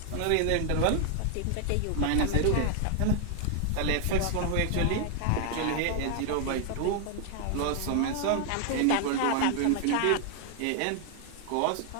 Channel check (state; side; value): different; both; correlation 0.00